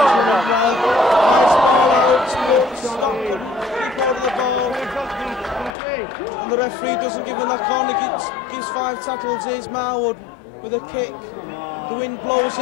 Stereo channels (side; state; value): right; drops out; at 5.8 s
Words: well. Nice ball out, but Scott couldn't keep hold of the ball. And the referee doesn't give him that corner, gives 5 tackles. Here's Marwood with a kick. The wind blows